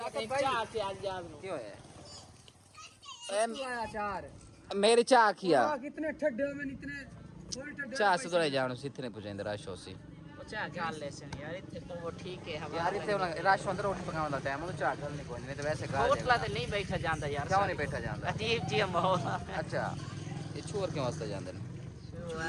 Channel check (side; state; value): both; identical; correlation 1.00